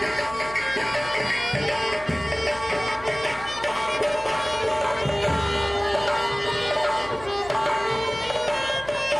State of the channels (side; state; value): left; noise; hum, 18 dB below the sound